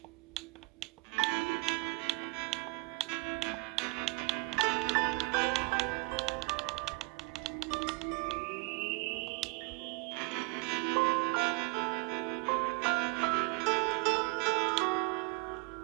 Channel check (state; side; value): quieter; left; 25.2 dB